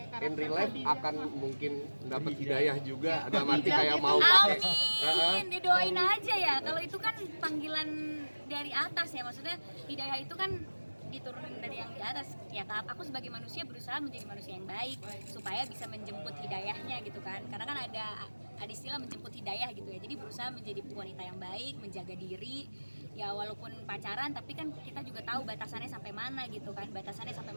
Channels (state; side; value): inverted; both; correlation -1.00